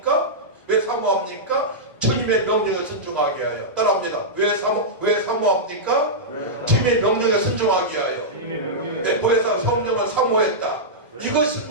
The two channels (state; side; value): normal; both; correlation -0.12